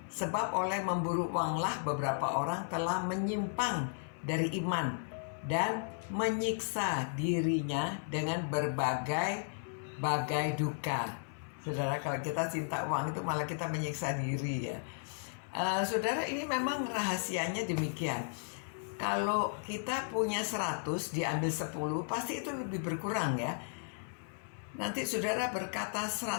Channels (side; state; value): right; silent; 55 dB below the other